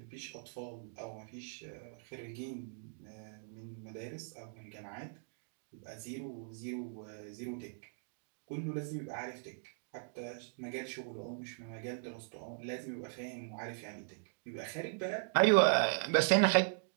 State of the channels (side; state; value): left; silent; digital silence